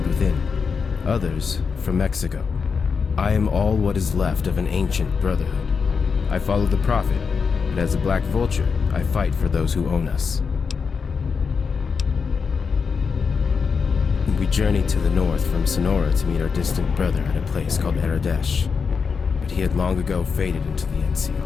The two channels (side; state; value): right; quieter; 5.6 dB